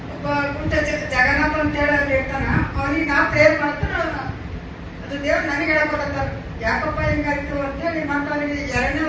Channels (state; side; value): identical; both; correlation 1.00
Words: ಒಬ್ಬ ಕುಂಟ ಜಗನ್ನಾಥ ಅಂತೇಳಿ ಅಲ್ಲಿ ಇರ್ತಾನ, ಅವನಿಗೆ ನಾ ಪ್ರೇರ್ ಮಾಡ್ತಾನೆ. ಅದು ದೇವ್ರು ನನಗೆ ಹೇಳ್ಕೊಡತ್ತಾರ, ಯಾಕಪ್ಪ ಹಿಂಗಾಯ್ತು ಅಂತೇಳಿ. ಮತ್ತೆ ಅವನಿಗೆ 2ನೇ